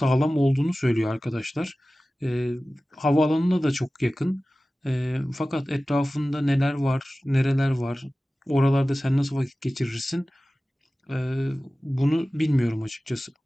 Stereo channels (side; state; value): both; normal; correlation 0.96